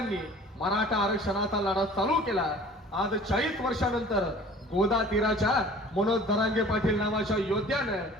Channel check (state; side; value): normal; both; correlation 0.47